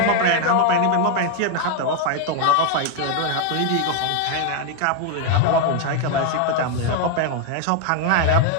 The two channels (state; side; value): different; both; correlation 0.01